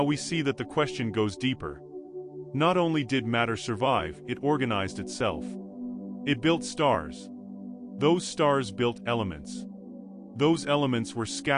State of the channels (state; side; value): identical; both; correlation 1.00